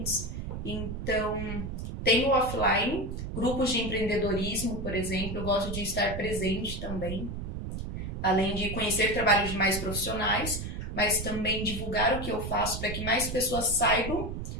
Então, tem o offline, grupos de empreendedorismo, por exemplo, eu gosto de estar presente também, além de conhecer trabalhos de mais profissionais, mas também divulgar o que eu faço para que mais pessoas saibam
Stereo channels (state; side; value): noise; right; rumble, 5 dB below the sound